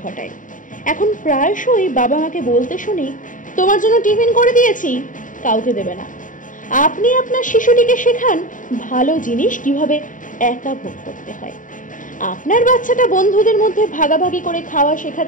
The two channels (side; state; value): right; late; 0.38 ms